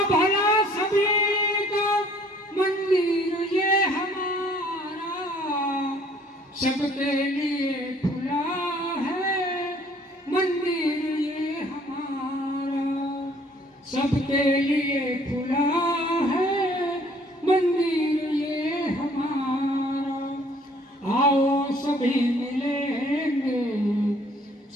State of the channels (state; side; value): normal; both; correlation 0.58